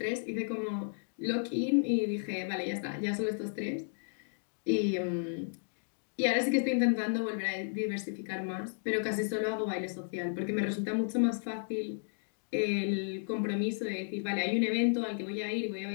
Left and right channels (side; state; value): right; silent; digital silence